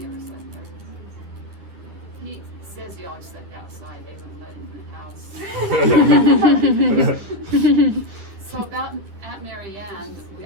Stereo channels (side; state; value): left; late; 10 ms